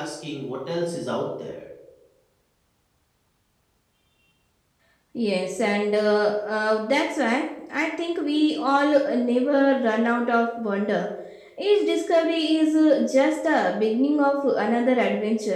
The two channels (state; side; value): identical; both; correlation 1.00